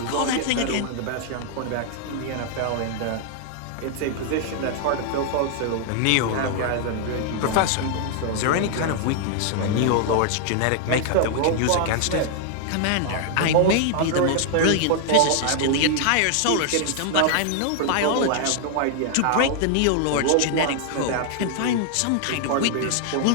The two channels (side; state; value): both; different; correlation 0.00